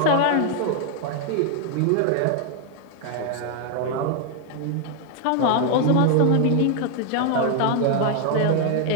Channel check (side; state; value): both; different; correlation 0.00